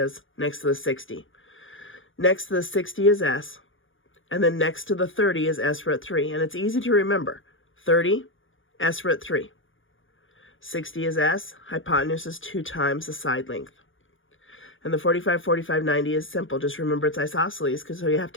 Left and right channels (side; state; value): right; late; 0.57 ms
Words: next to the 60. Next to the 60 is s, and then next to the 30 is s root 3. And it's easy to remember. 30, s root 3. 60 is s, hypotenuse is 2 times the side length. And the 45, 45, 90 is simple. Just remember it's isosceles, because so you have